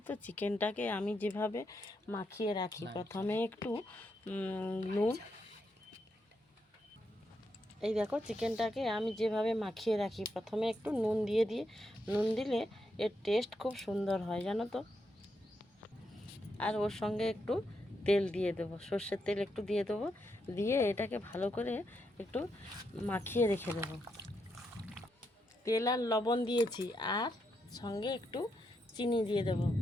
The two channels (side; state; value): both; normal; correlation 0.81